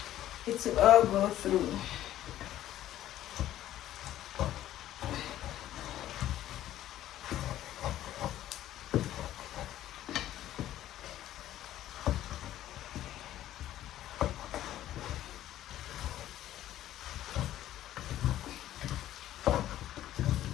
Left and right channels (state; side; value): quieter; right; 13.0 dB